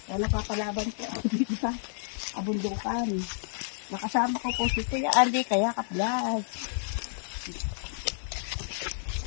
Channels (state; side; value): silent; right; digital silence